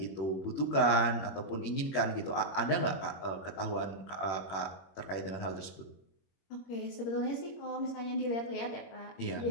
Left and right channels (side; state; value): right; late; 21 ms